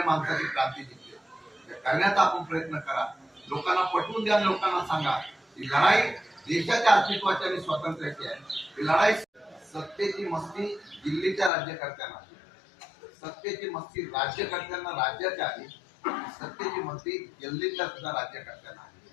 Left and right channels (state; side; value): drops out; right; at 11.5 s